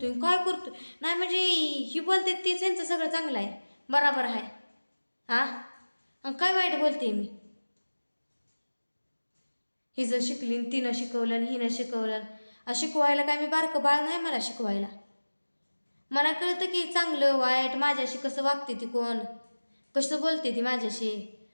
काय करतोय. नाही म्हणजे ही बोलते तीच यांचं सगळं चांगलं आहे, बराबर आहे. काय वाईट बोलते मी. हिचं शिकली तिनं शिकवलं आणि हिनं शिकवलं. शिकवायला काय मी बारकं बाळ नाही मला शिकवायला. मला कळतं की चांगलं वाईट, माझ्याशी कसं वागते ती, कोण कसं बोलते ती माझ्याशी,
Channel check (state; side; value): inverted; both; correlation -1.00